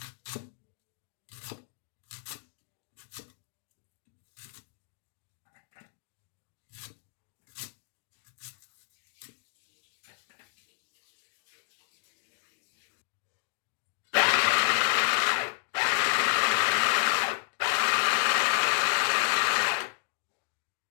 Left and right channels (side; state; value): right; silent; 57 dB below the other